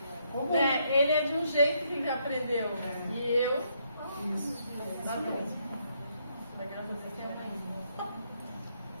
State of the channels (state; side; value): inverted; both; correlation -0.74